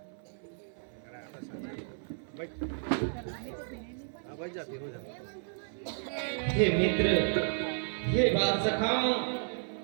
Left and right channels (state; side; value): silent; left; 56 dB below the other